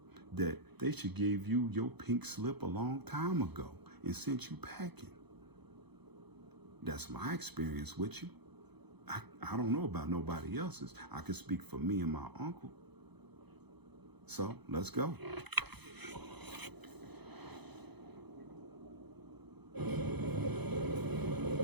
That they should give you your pink slip a long time ago and sent you packing. That's my experience with you. I don't know about nobody else's. I can speak for me and my uncle. So let's go.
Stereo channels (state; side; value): late; left; 0.99 ms